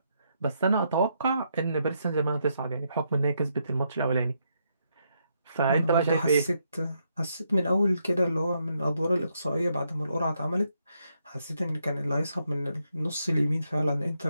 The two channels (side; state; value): both; inverted; correlation -0.78